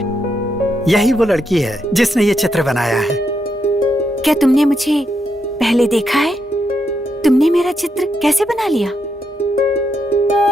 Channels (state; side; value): normal; both; correlation 0.81